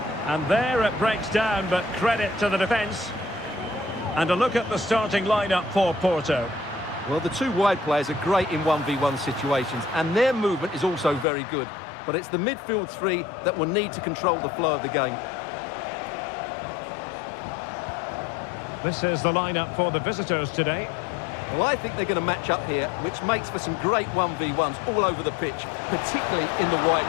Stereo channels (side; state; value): right; drops out; at 11.2 s